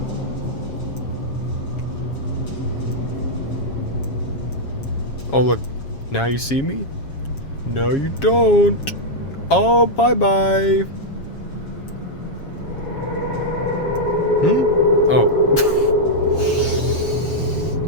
Oh, look. Now you see me? No, you don't. Oh, bye-bye. Oh.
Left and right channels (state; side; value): late; right; 7.3 ms